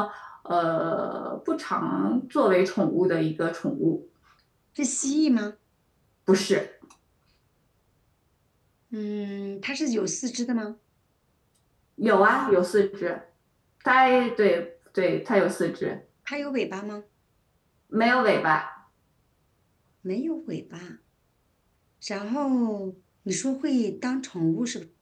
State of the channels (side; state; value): both; identical; correlation 1.00